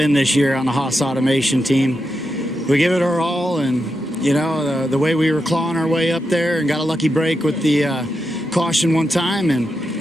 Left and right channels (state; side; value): normal; both; correlation 0.86